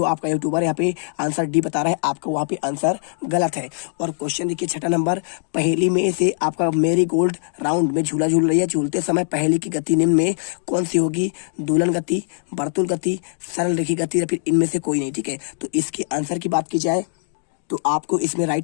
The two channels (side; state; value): right; silent; digital silence